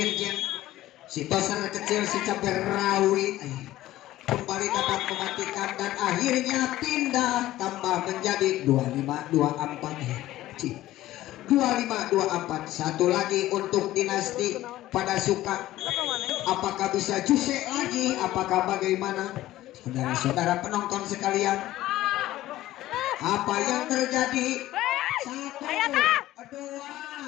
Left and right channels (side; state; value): right; quieter; 15.2 dB